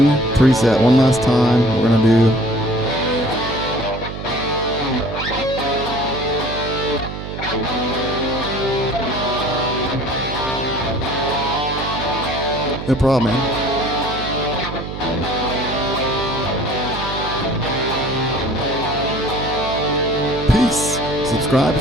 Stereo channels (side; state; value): right; noise; hum, 8 dB below the sound